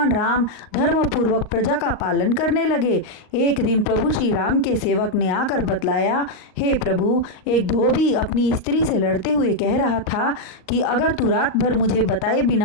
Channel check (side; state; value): right; late; 38 ms